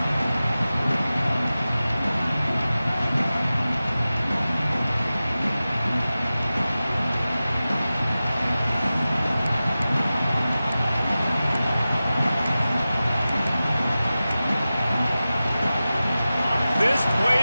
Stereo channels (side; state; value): both; inverted; correlation -0.95